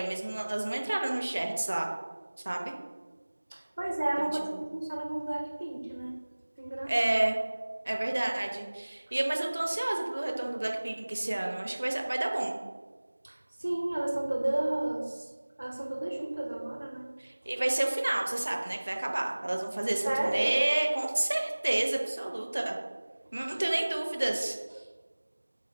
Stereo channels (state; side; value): inverted; both; correlation -1.00